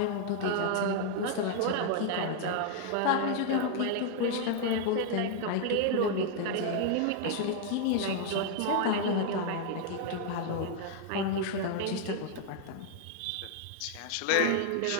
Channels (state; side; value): different; both; correlation 0.00